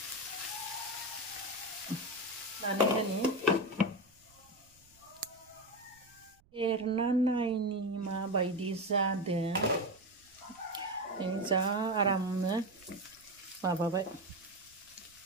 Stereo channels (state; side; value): noise; right; rumble, 30 dB below the sound